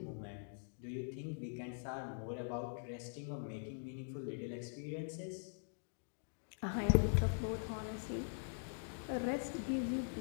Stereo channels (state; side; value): silent; right; digital silence